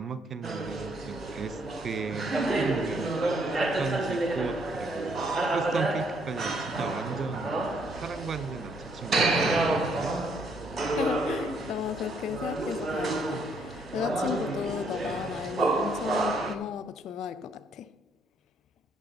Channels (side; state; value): both; normal; correlation 0.69